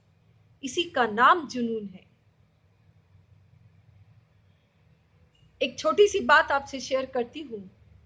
इसी का नाम जुनून है। एक छोटी सी बात आपसे शेयर करती हूं।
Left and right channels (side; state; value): both; identical; correlation 1.00